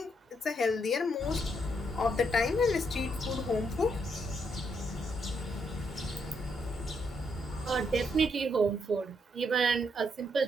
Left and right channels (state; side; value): normal; both; correlation 0.76